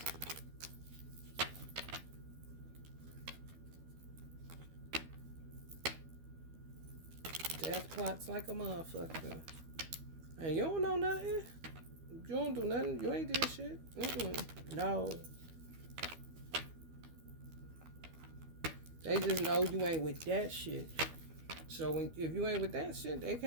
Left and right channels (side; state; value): left; late; 12 ms